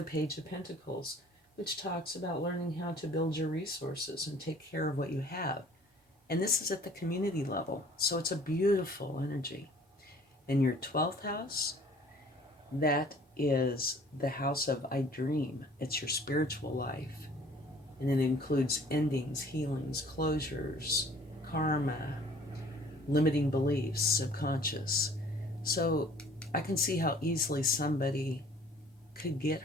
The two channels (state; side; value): normal; both; correlation 0.53